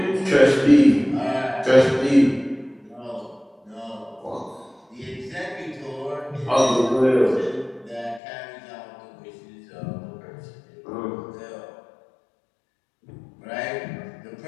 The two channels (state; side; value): drops out; right; at 8.2 s